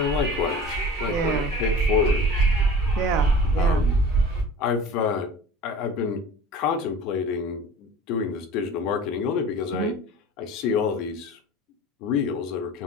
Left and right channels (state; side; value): normal; both; correlation 0.39